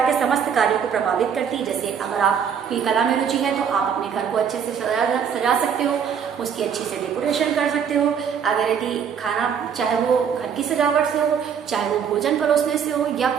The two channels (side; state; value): left; quieter; 7.5 dB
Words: के समस्त कार्यों को प्रभावित करती है। जैसे अगर आपकी कला में रुचि है तो आप अपने घर को अच्छे से सजा सकते हो, उसकी अच्छी से डेकोरेशन कर सकते हो। अगर यदि खाना, चाहे वो घर की सजावट से हो, चाहे वो भोजन परोसने से हो, या